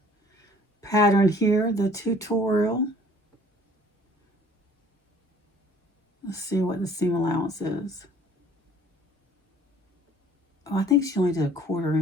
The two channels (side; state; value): both; normal; correlation 0.54